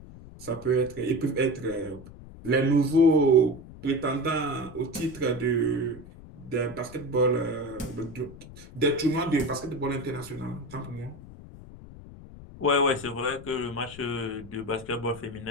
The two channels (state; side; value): noise; left; rumble, 17 dB below the sound